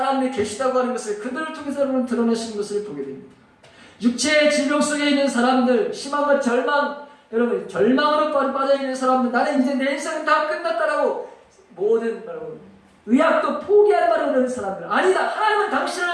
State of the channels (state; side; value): identical; both; correlation 1.00